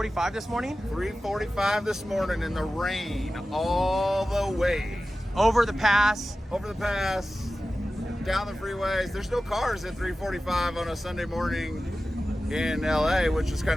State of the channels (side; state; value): both; normal; correlation 0.94